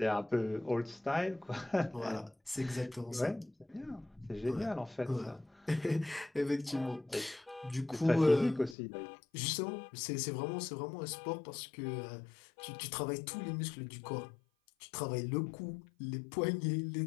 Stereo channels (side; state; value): right; drops out; at 8.8 s